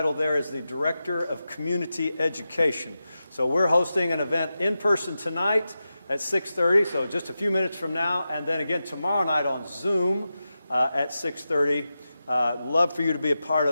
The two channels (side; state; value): both; inverted; correlation -0.92